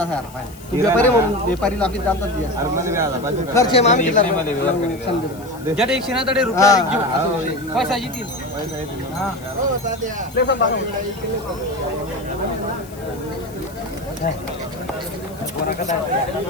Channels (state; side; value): noise; left; hiss, 21 dB below the sound